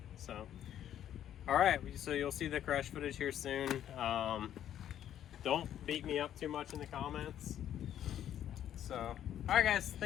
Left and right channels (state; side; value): quieter; right; 10.7 dB